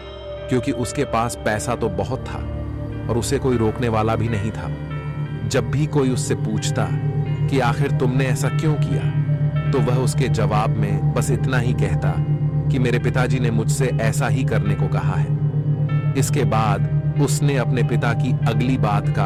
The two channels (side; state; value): both; identical; correlation 1.00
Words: क्योंकि उसके पास पैसा तो बहुत था और उसे कोई रोकने वाला भी नहीं था। जब भी कोई उससे पूछता कि आखिर तुमने ऐसा क्यों किया, तो वह उसके जवाब में बस इतना ही कहता कि मेरे पिताजी ने मुझसे ऐसा ही करने को कहा है। इसके बाद उसने अपने पिता की अगली बात का